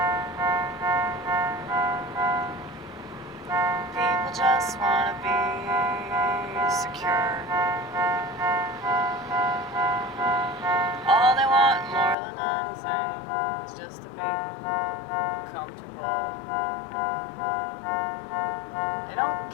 People just want to be secure. All they want more than anything is just to be comfortable. They don't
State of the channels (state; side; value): drops out; right; at 12.2 s